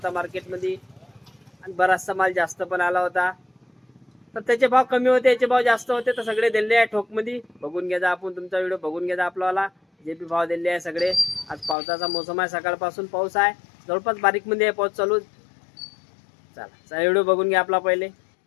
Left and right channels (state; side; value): drops out; right; at 11.8 s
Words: मार्केटमध्ये आणि बराचसा माल जास्त पण आला होता. तर त्याचे भाव कमी होते, याचे भाव जास्त होते, तर सगळे दिले आहे ठोकमध्ये. बघून घ्या आपण, तुमचा व्हिडिओ बघून घ्या आपल्याला. जे बी भाव दिले आहे सगळे. आज पावसाचा मोसम आहे, सकाळपासून पाऊस आहे, जवळपास बारीकमध्ये आहे पाऊस चालू. चला व्हिडिओ बघून घ्या आपला पहिले.